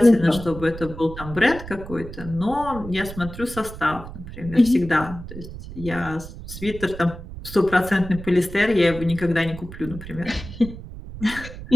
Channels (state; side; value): noise; right; rumble, 12 dB below the sound